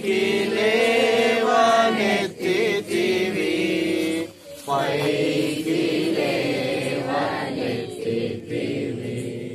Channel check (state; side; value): identical; both; correlation 1.00